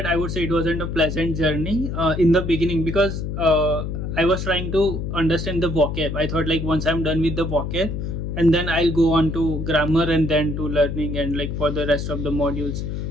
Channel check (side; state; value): left; noise; hum, 4 dB below the sound